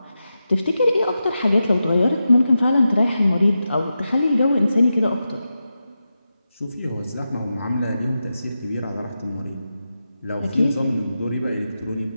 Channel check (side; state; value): both; inverted; correlation -0.90